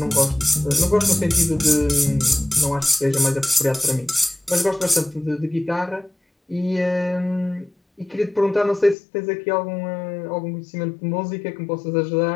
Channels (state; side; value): drops out; right; at 9.0 s